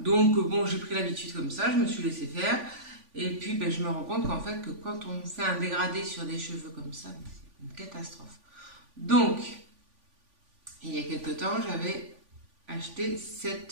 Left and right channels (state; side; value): late; left; 3.5 ms